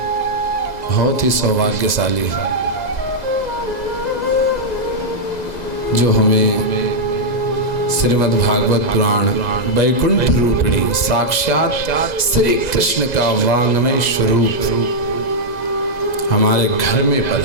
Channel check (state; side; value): late; right; 2.0 ms